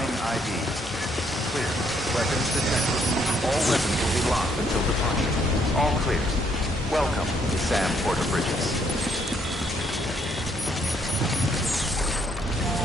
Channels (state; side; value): normal; both; correlation 0.70